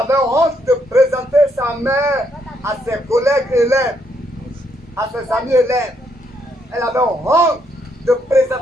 honte de présenter sa mère à ses collègues élèves, à ses amis élèves. Elle avait honte de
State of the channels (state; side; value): normal; both; correlation 0.74